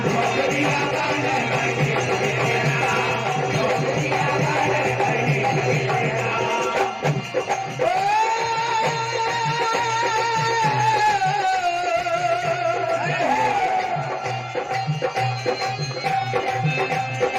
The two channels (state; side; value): identical; both; correlation 1.00